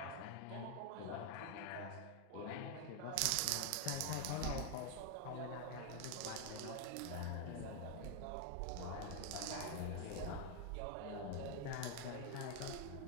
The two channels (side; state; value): both; different; correlation 0.01